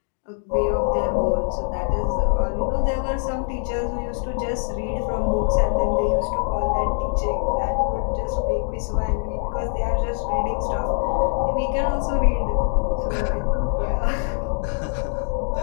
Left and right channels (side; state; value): right; silent; 57 dB below the other